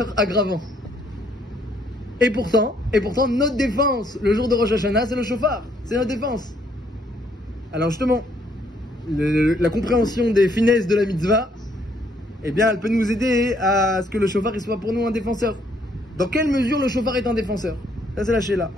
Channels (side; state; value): both; normal; correlation 0.68